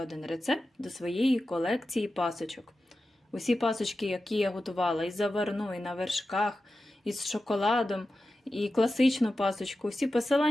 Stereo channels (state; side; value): normal; both; correlation 0.93